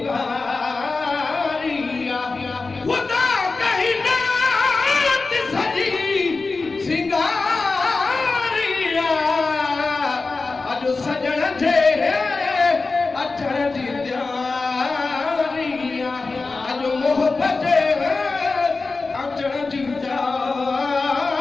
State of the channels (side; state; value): right; quieter; 3.9 dB